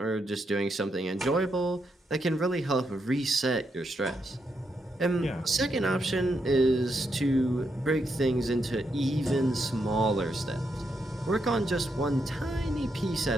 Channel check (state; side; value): normal; both; correlation 0.81